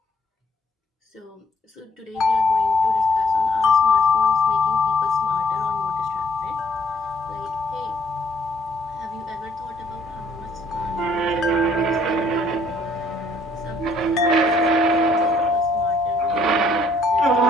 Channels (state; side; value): normal; both; correlation 0.65